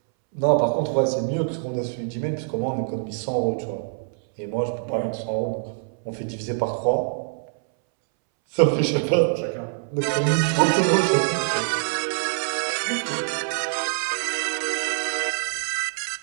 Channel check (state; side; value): silent; left; 62 dB below the other